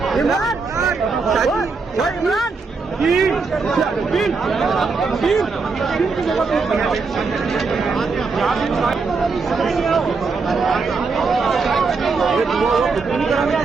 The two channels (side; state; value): left; quieter; 4.5 dB